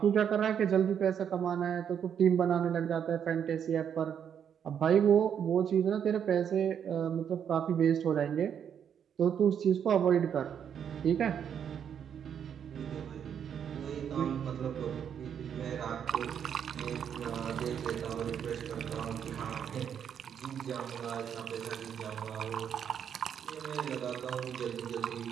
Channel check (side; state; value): left; quieter; 8.3 dB